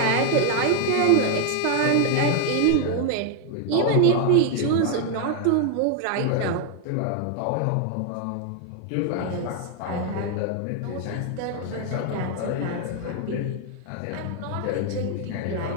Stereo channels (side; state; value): both; different; correlation 0.01